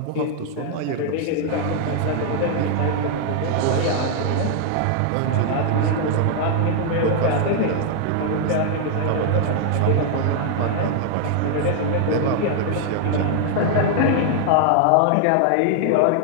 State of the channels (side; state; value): both; different; correlation 0.00